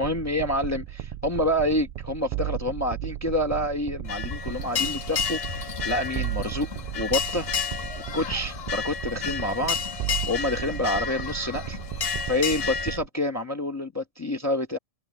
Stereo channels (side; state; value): left; late; 1.7 ms